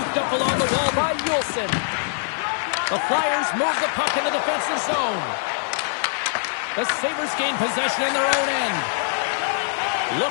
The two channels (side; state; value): right; silent; digital silence